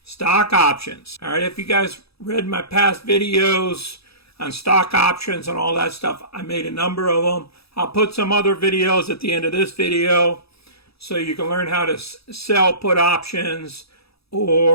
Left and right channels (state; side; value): late; right; 0.77 ms